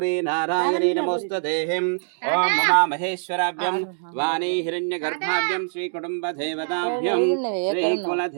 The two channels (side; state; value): left; silent; digital silence